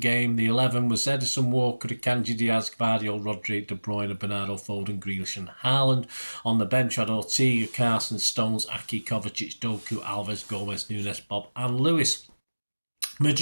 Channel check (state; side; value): inverted; both; correlation -1.00